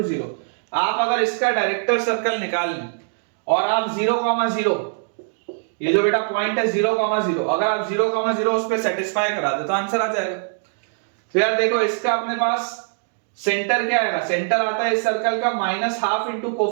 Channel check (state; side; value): silent; left; 62 dB below the other